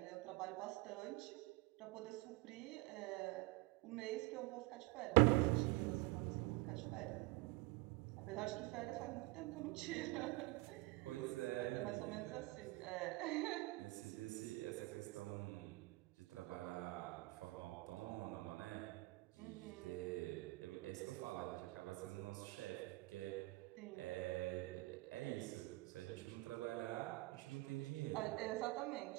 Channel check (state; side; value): quieter; left; 22.2 dB